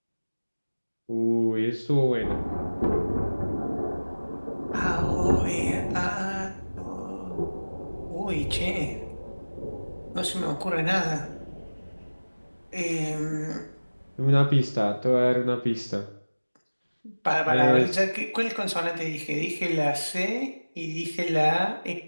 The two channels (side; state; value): both; inverted; correlation -1.00